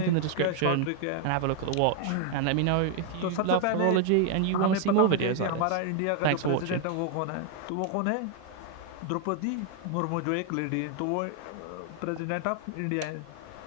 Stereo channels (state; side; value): different; both; correlation 0.00